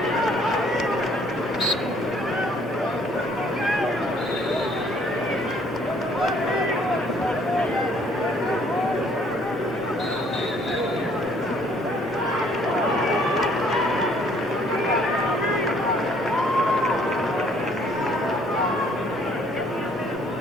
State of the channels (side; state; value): both; normal; correlation 0.62